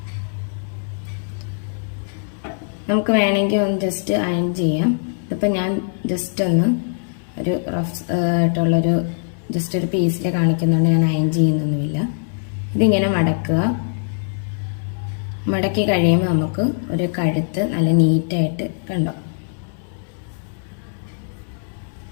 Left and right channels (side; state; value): right; silent; digital silence